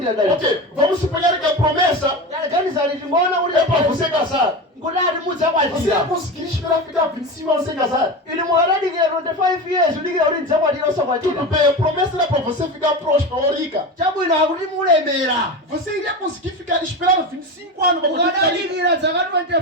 dalitso Ok, vamos suponhar que a promessa ganizani tingoona kuti é para você casar. kuti ati Você mudzakwatira ia conseguir esperar ficar 25 anos sem casar. inu mukadadikira 25 years udikira kuti ndidzakwatira Tudo osakwatira bem, a promessa era para você ficar próspero ou rica. chabwino akuti mulemera Você iria conseguir esperar 25 anos para poder ficar rico. mukadadikira zaka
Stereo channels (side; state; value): both; normal; correlation 0.24